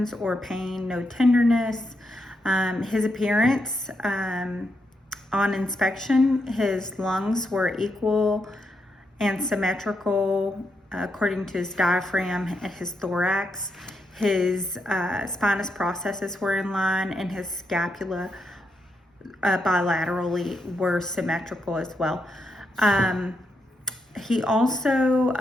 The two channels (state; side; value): normal; both; correlation 0.82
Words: or pain, no tenderness. His appearance on inspection, his lungs were equal and symmetrical according to his diaphragm and his thorax. His spinous processes were in line, and his scapula bilaterally were symmetrical as well. He also